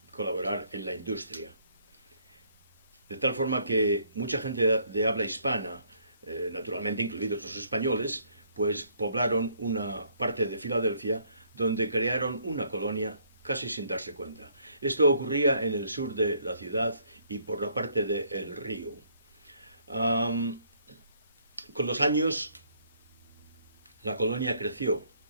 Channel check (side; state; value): both; inverted; correlation -0.66